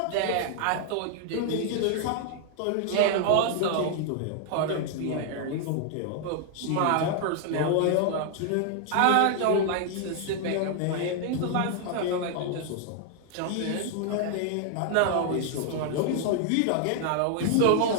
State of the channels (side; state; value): both; different; correlation 0.00